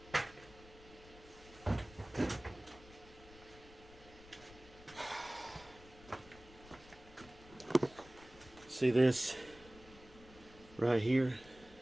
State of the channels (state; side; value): noise; left; rumble, 20 dB below the sound